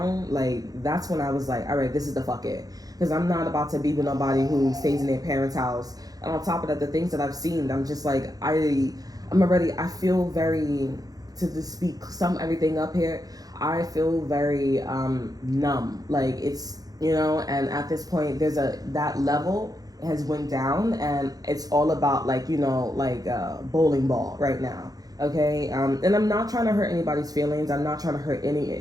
like, that's when I was like, all right, this is the fuck it. Because I'm not about to be with nobody who stays in their parents' house. And on top of that, the things that I've seen, I'm just like, I feel very, to just speak everything up here, I feel very numb. Like, it's, you know, and at this point, that level has went down, and it's all about, like, you know, like a bowling ball right now. Okay, and I'm not trying to hurt anybody's feelings. I'm not trying to hurt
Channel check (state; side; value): late; left; 0.18 ms